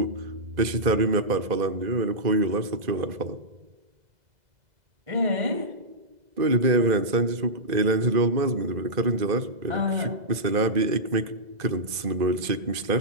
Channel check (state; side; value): late; left; 2.0 ms